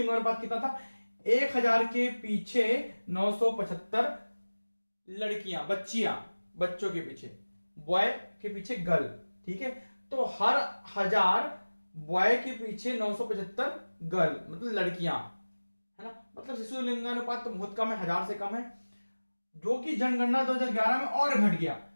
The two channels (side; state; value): both; inverted; correlation -1.00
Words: कितना था, 1000 के पीछे 975 लड़कियां, बच्चों के पीछे, बॉय के पीछे गर्ल। ठीक है, तो हर 1000 बॉय के पीछे 975 गर्ल, मतलब लड़कियां, है ना। मतलब शिशु लिंगानुपात तो बहुत कम है, 1000 से कम है, जो कि जनगणना 2011 में और घट गया।